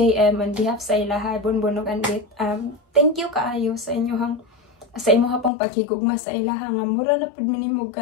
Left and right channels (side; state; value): right; drops out; at 5.5 s